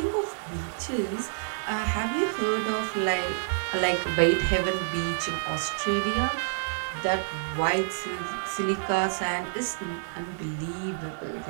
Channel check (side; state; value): left; silent; 56 dB below the other